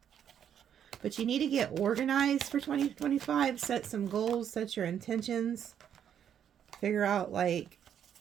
But you need to get organized for 2025. Set some goals, set your intentions. Figure out like...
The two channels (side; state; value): left; quieter; 9.0 dB